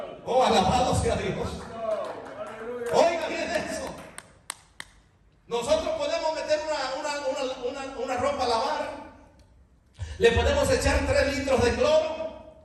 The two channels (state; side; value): identical; both; correlation 1.00